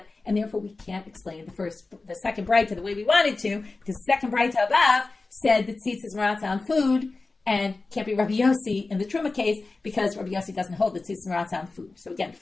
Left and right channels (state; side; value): quieter; right; 3.6 dB